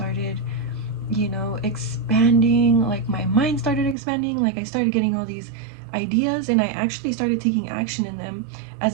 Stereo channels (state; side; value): drops out; left; at 4.0 s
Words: expanding. Like, my mind started expanding. Like, I started getting all these ideas and I actually started taking action in them,